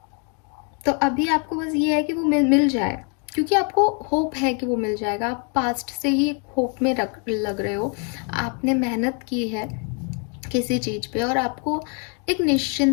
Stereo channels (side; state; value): right; quieter; 37.4 dB